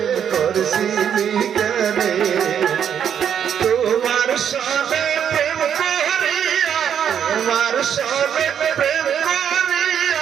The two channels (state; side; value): quieter; left; 8.6 dB